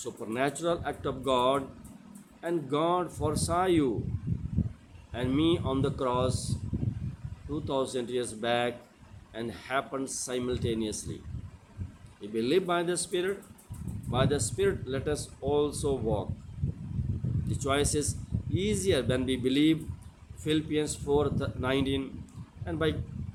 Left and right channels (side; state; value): both; identical; correlation 1.00